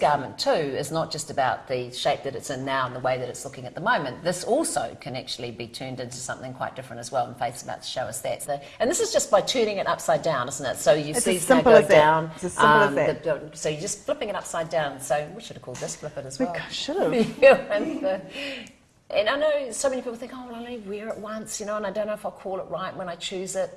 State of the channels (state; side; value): identical; both; correlation 1.00